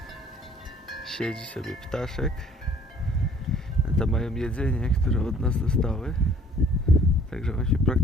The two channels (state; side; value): normal; both; correlation 0.55